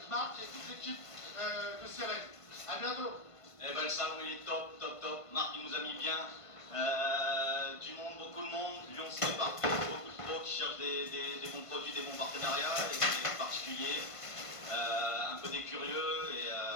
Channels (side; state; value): right; late; 1.5 ms